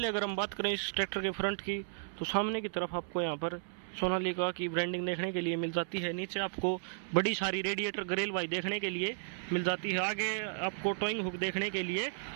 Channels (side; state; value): left; silent; 55 dB below the other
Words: अगर हम बात करें इस ट्रैक्टर के फ्रंट की, तो सामने की तरफ आपको यहाँ पर सोनालिका की ब्रांडिंग देखने के लिए मिल जाती है। नीचे आपको बड़ी सारी रेडिएटर ग्रिल भाई देखने के लिए मिल जाती है। आगे आपको टोइंग हुक देखने के लिए